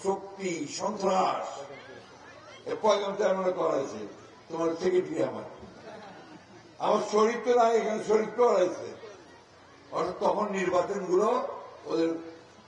শক্তি, সন্ত্রাস। পয়গাম চেয়ারম্যান করা হয়েছে, তোমার সেক্রেটারি আমার শরীর তো নাই, এখানে শরীর তো হারাইছে। অর্থাৎ তখন নির্বাচন গুলো ওদের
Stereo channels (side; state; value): both; identical; correlation 1.00